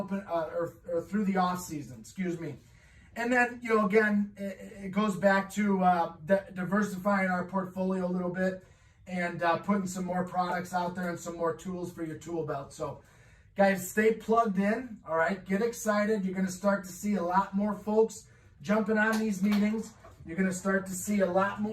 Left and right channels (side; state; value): both; identical; correlation 1.00